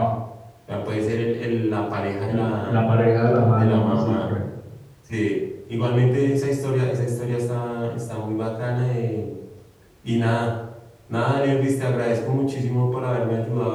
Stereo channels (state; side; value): identical; both; correlation 1.00